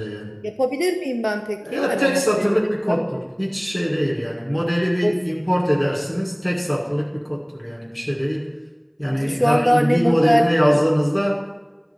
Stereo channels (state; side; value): identical; both; correlation 1.00